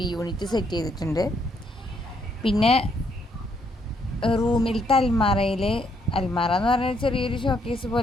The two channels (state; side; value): normal; both; correlation 0.72